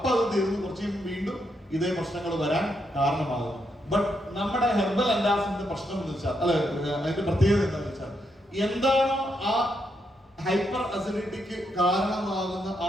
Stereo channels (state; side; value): normal; both; correlation 0.80